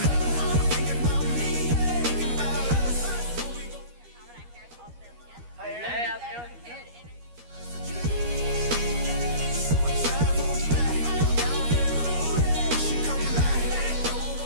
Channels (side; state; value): left; late; 13 ms